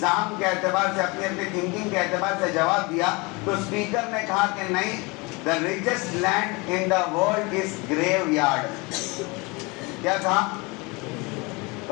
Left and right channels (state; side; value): quieter; right; 26.8 dB